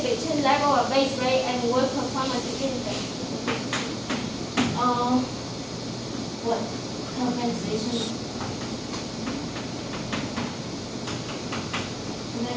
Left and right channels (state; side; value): identical; both; correlation 1.00